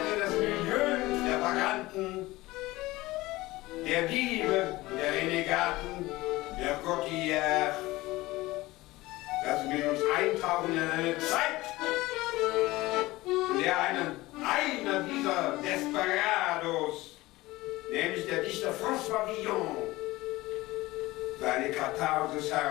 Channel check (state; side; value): quieter; right; 19.2 dB